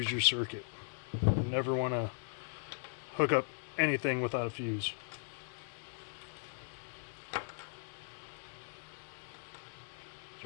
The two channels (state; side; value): silent; right; digital silence